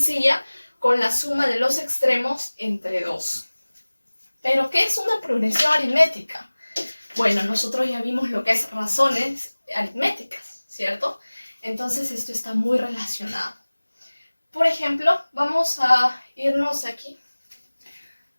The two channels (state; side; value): inverted; both; correlation -1.00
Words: con la suma de los extremos entre 2. ¿Pero qué es una progresión aritmética? Bueno, nosotros ya vimos lo que es razones aritméticas, ¿cierto? Entonces esto está muy relacionado. Por ejemplo, vamos a irnos aquí.